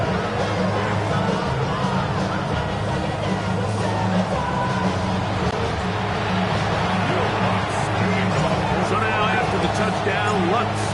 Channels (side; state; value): both; identical; correlation 1.00